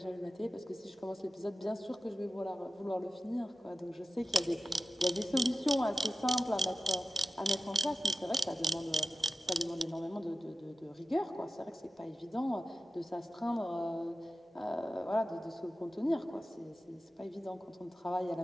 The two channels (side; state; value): both; normal; correlation 0.91